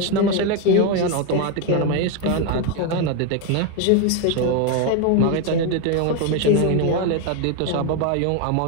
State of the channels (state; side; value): different; both; correlation 0.02